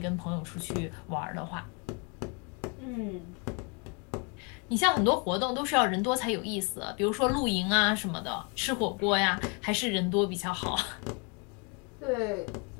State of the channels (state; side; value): quieter; right; 34.2 dB